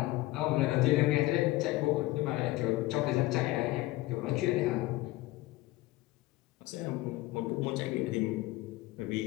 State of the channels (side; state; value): right; quieter; 18.6 dB